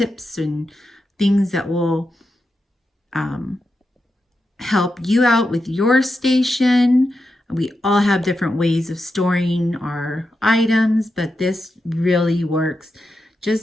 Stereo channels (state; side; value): normal; both; correlation 0.88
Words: and things that will help you out with your station. We all have different ways of storing our items, but this really works